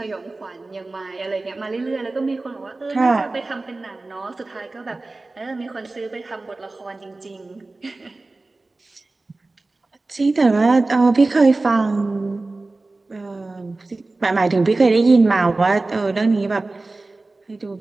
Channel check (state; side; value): quieter; left; 3.2 dB